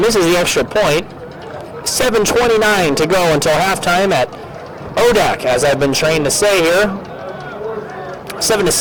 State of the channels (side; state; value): both; identical; correlation 1.00